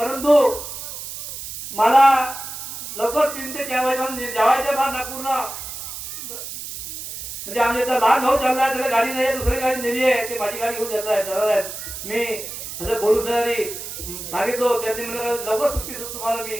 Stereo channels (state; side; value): noise; right; hiss, 9 dB below the sound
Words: मला लवकर 3 ते 4 वाजेपर्यंत जावायचं फार नागपूरला. म्हणजे आमच्या इथं लहान भाऊ चालला आहे, त्याला गाडी नाही, दुसरी गाडी नेली आहे, ते माझी गाडी घेऊन चालला आहे. मी असं बोलू सांगितलं त्यांनी मला लवकर सुट्टी देतो तुम्हाला. मी